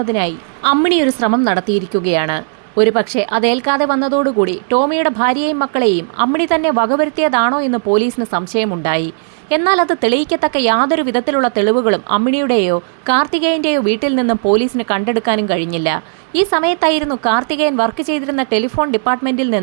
അമ്മിണി ഒരു ശ്രമം നടത്തിയിരിക്കുകയാണ്. ഒരുപക്ഷെ അതേൽക്കാതെ വന്നതോടുകൂടി ടോമിയുടെ ഭാര്യയെയും മക്കളെയും അമ്മിണി തന്നെ വകവരുത്തിയതാണോ എന്ന് പോലീസിന് സംശയമുണ്ടായി. എന്നാൽ അത് തെളിയിക്കത്തക്ക യാതൊരു വിധത്തിലുള്ള തെളിവുകളും അമ്മിണിയുടെയോ കാർത്തികേയന്റെയോ വീട്ടിൽ നിന്നും പോലീസിന് കണ്ടെടുക്കാനും കഴിഞ്ഞില്ല. ഈ സമയത്തായിരുന്നു കാർത്തികേയൻ വർക്ക് ചെയ്തിരുന്ന ടെലിഫോൺ ഡിപ്പാർട്ട്മെന്റിൽ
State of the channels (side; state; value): left; silent; digital silence